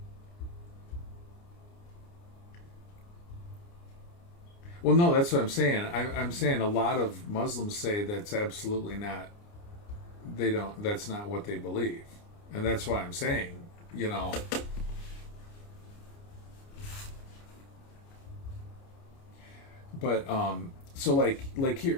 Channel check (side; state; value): right; late; 29 ms